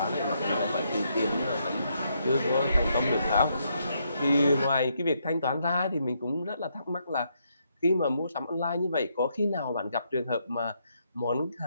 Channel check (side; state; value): both; inverted; correlation -0.76